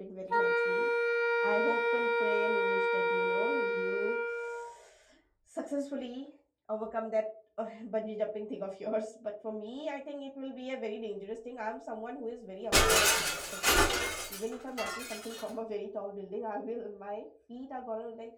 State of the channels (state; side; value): identical; both; correlation 1.00